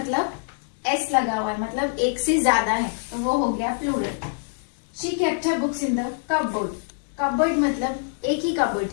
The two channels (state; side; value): silent; right; digital silence